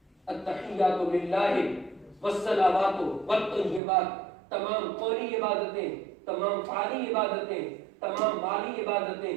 التحیات للہ والصلوات والطیبات، تمام قولی عبادتیں، تمام فعلی عبادتیں، تمام مالی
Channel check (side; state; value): left; drops out; at 3.8 s